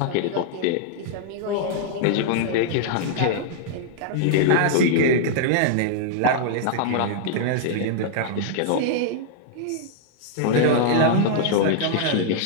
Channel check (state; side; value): different; both; correlation -0.01